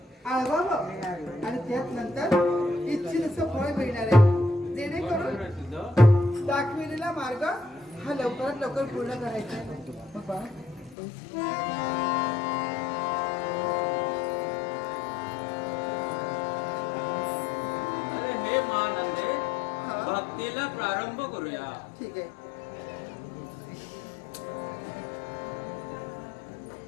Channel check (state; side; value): drops out; right; at 11.0 s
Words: आळवावं आणि त्यात नंतर इच्छितसं फळ मिळणार आहे, जेणेकरून दाखविलेला मार्ग हा लवकरात लवकर पूर्ण करायचा आहे. बाबा हे महानंदे, भक्तीला प्रारंभ करूया. ठीक आहे.